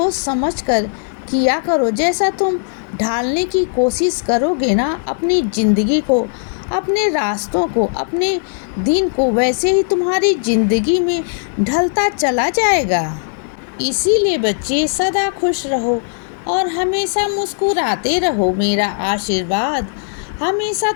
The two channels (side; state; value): right; silent; digital silence